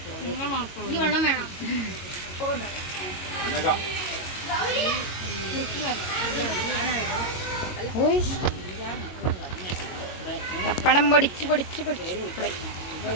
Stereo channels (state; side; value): late; right; 22 ms